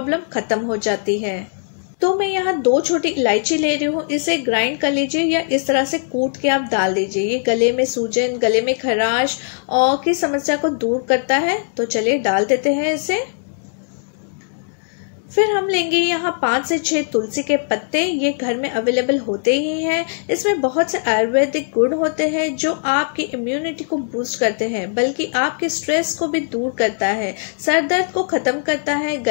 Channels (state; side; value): silent; right; digital silence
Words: खत्म हो जाती है। तो मैं यहाँ 2 छोटी इलायची ले रही हूँ। इसे ग्राइंड कर लीजिए या इस तरह से कूट के आप डाल दीजिए। ये गले में सूजन, गले में खराश और की समस्या को दूर करता है। तो चलिए डाल देते हैं इसे। फिर हम लेंगे यहाँ 5 से 6 तुलसी के पत्ते। ये घर में अवेलेबल होते ही हैं। इसमें बहुत से आयुर्वेदिक गुण होते हैं जो आपकी इम्यूनिटी को बूस्ट करते हैं, बल्कि आपके स्ट्रेस को भी दूर करता है, सर दर्द को ख़त्म करता है,